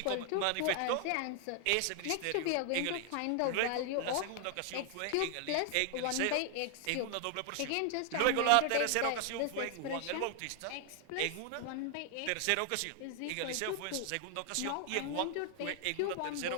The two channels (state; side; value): different; both; correlation 0.00